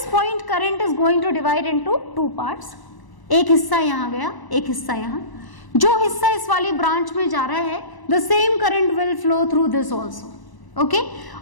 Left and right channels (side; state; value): right; late; 1.0 ms